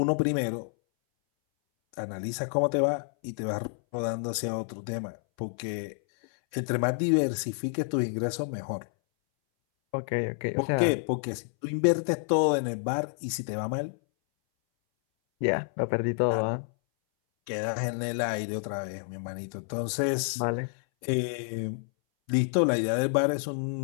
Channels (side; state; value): right; silent; 59 dB below the other